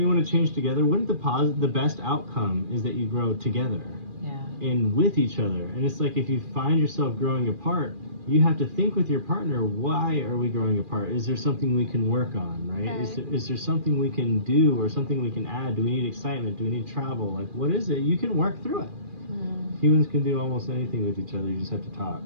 you want to change together? Wouldn't the best outcome is that you grow together? Yeah. And with each other. And it's like if you find yourself growing apart, you have to think with your partner, why are we growing apart? Is there something we can work on, right? Is there something we can do or something we can add? Do we need excitement? Do we need travel? Like, what is it? You can work through it. Humans can do almost anything with each other. You just have to talk.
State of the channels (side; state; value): left; late; 2.4 ms